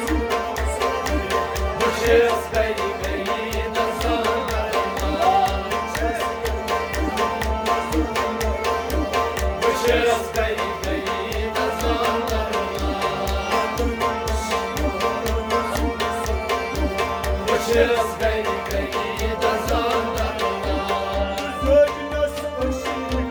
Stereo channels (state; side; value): identical; both; correlation 1.00